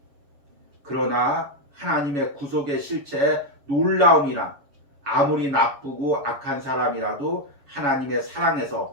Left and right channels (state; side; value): late; left; 7.1 ms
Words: 그러나 하나님의 구속의 실체의 놀라움이란 아무리 나쁘고 악한 사람이라도 하나님의